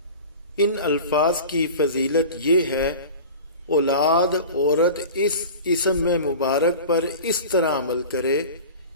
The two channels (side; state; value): both; inverted; correlation -0.36